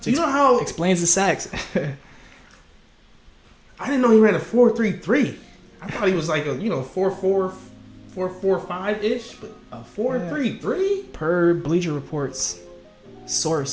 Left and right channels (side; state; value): both; identical; correlation 1.00